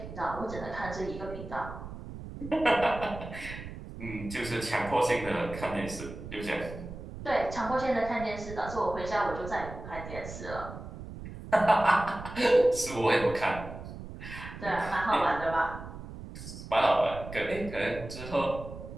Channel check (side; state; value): right; noise; rumble, 11 dB below the sound